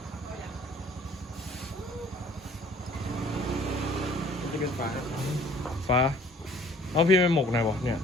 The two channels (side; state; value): both; normal; correlation 0.54